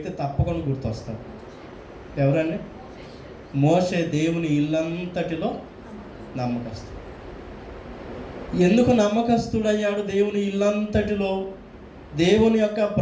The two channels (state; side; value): identical; both; correlation 1.00